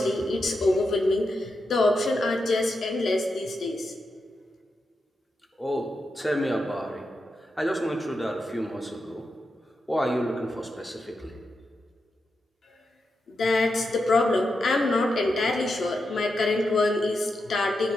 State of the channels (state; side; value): normal; both; correlation 0.87